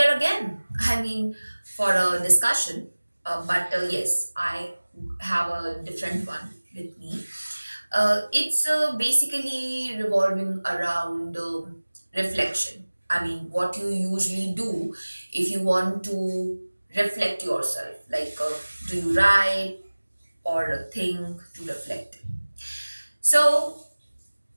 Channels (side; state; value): both; inverted; correlation -1.00